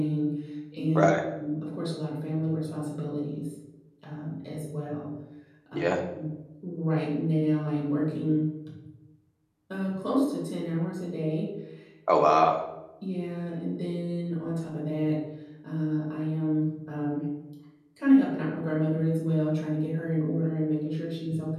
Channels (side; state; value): both; identical; correlation 1.00